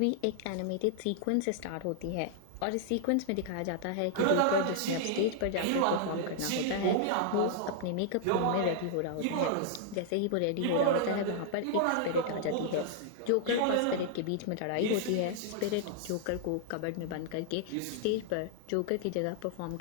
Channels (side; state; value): both; different; correlation -0.01